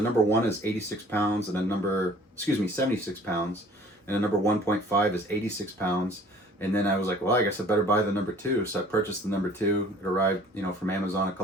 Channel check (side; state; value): both; normal; correlation 0.52